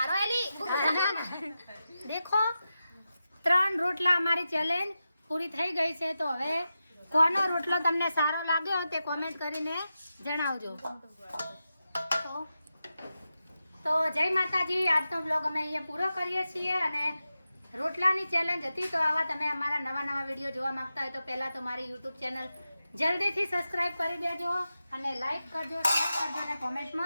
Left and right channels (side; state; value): both; inverted; correlation -0.91